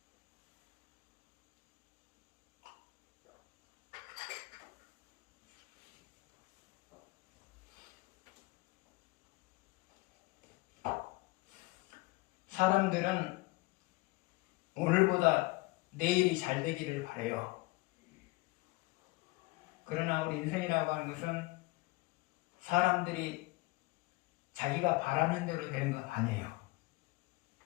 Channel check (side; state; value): right; quieter; 22.1 dB